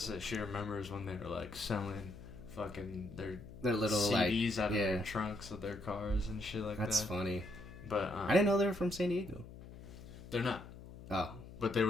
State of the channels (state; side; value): noise; left; hum, 15 dB below the sound